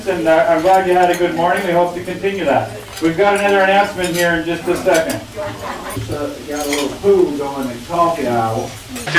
and I'm glad you had a good morning. We hope to continue that. We've got another announcement here in just a second. Got a little food going in coffee aisle.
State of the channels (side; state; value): both; identical; correlation 1.00